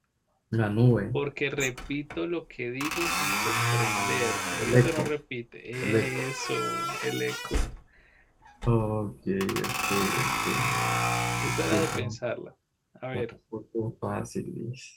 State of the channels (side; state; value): both; identical; correlation 1.00